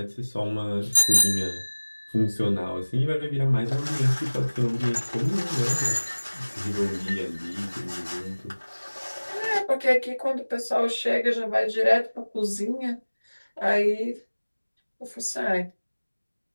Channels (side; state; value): both; inverted; correlation -1.00